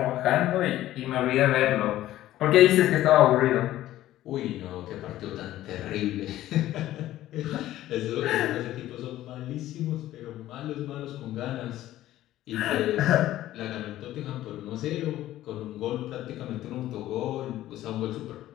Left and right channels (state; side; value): quieter; right; 14.3 dB